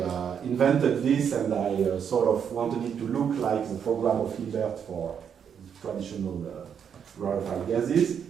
invented this and I sort of wanted it to look like the program of Hilbert for traditional rarefied gases.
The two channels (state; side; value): quieter; left; 7.8 dB